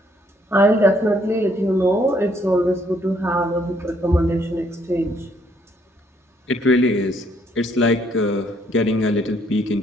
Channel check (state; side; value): normal; both; correlation 0.68